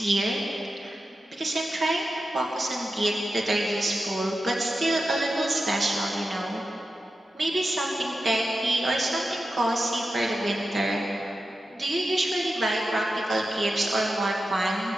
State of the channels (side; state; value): both; normal; correlation 0.91